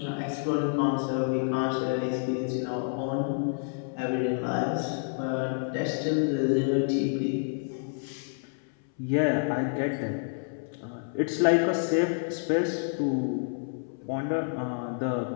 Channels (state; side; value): silent; right; 59 dB below the other